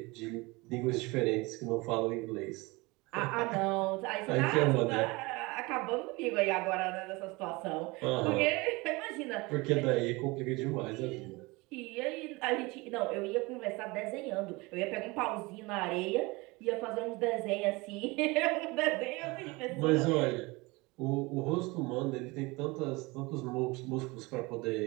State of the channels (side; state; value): left; quieter; 24.2 dB